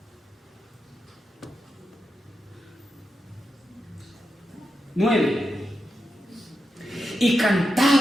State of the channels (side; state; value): both; normal; correlation 0.87